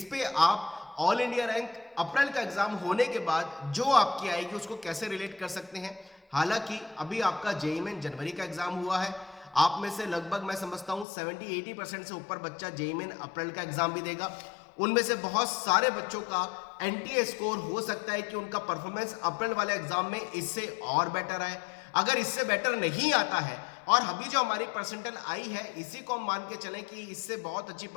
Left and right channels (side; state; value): right; drops out; at 11.1 s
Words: पे आप ऑल इंडिया रैंक अप्रैल का एग्जाम होने के बाद जो आपकी आएगी उसको कैसे रिलेट कर सकते हैं। हालांकि अभी आपका जेईई में जनवरी का एग्जाम हुआ है, आप में से लगभग मैं समझता हूं 70-80% से ऊपर बच्चा जेईई में अप्रैल का एग्जाम भी देगा। उनमें से बहुत सारे बच्चों का एनटीए स्कोर हो सकता है कि उनका परफॉर्मेंस अप्रैल वाले एग्जाम में इससे और बेटर आए। अगर इससे बेटर नहीं आता है और अभी जो हमारी परसेंटाइल आई है इसी को हम मान के चलें कि इससे बहुत अच्छी